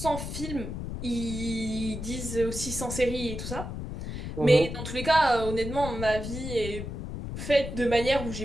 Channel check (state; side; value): noise; left; rumble, 6 dB below the sound